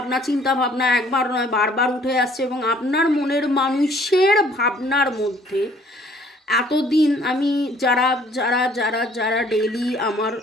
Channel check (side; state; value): both; normal; correlation 0.59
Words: ভাবনা একবার নয় বারবার উঠে আসছে এবং আপনার মনের মানুষের ভাবনার মধ্যে এতদিন আমি যারা যারা যারা যারা ডেইলি আমার